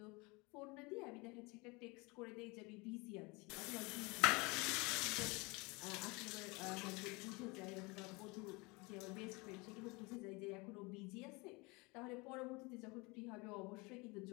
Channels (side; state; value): right; quieter; 26.6 dB